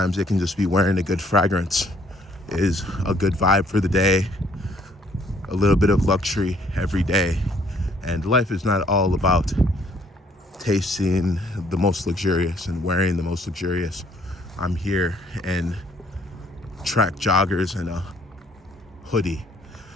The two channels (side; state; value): both; normal; correlation 0.63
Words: it can just be wearing a good fragrance is a good vibe for the day, a little bit of luxury every day. And life is not all about tasting the most luxurious and wearing the most luxurious. I'm here in track joggers and a hoodie.